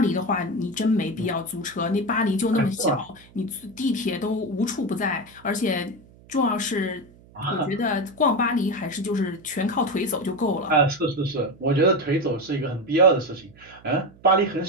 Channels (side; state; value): right; noise; hum, 25 dB below the sound